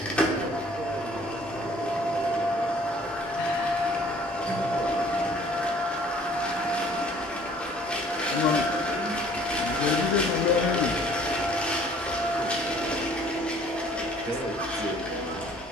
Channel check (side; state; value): both; normal; correlation 0.56